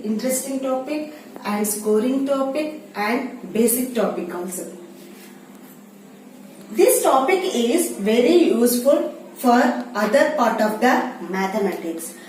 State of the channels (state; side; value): identical; both; correlation 1.00